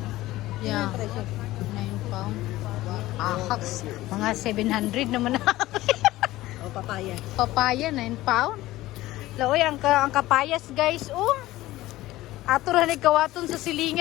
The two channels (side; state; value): right; quieter; 16.9 dB